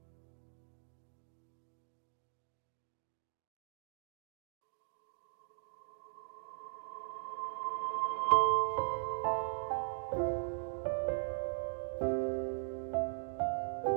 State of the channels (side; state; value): left; silent; digital silence